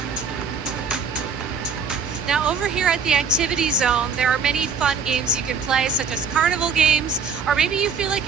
Now, over here at the activity zone, there are many fun games you can play, such as carnival games, or maybe you feel like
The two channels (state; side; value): quieter; left; 5.6 dB